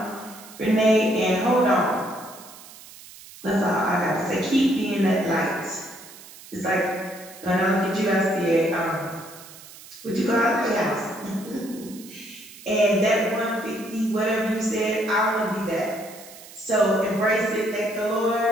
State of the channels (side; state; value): right; noise; hiss, 18 dB below the sound